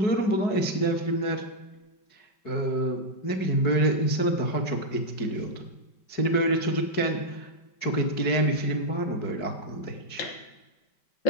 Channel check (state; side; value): late; right; 5.2 ms